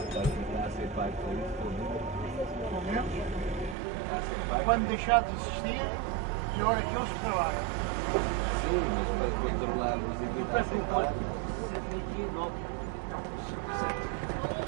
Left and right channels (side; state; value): left; drops out; at 3.8 s